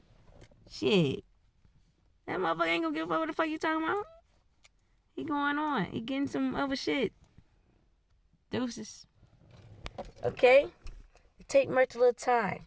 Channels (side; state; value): both; identical; correlation 1.00